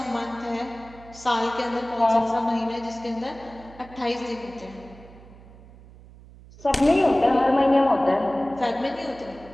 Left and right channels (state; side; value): noise; right; hum, 21 dB below the sound